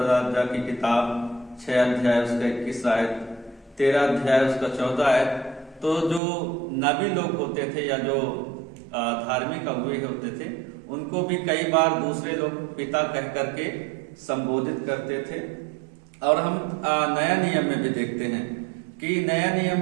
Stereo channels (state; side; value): drops out; left; at 6.2 s